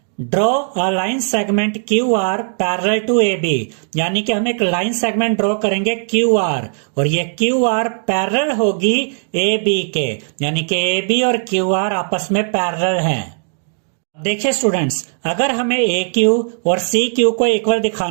Draw a line segment QR parallel to AB, यानी कि हम एक लाइन सेगमेंट ड्रॉ करेंगे QR और ये QR पैरेलल होगी AB के, यानी कि AB और QR आपस में पैरेलल हैं। देखिए स्टूडेंट्स, अगर हमें AQ और CQ को इक्वल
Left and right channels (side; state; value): left; silent; digital silence